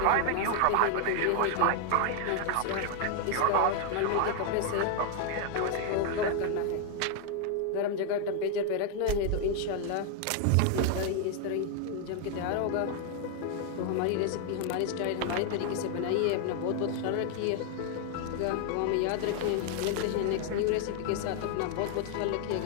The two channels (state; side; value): different; both; correlation 0.00